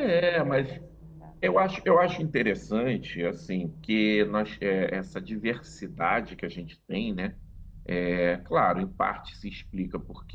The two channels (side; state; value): both; identical; correlation 1.00